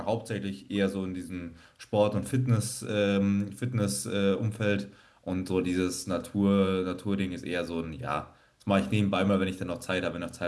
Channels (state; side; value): identical; both; correlation 1.00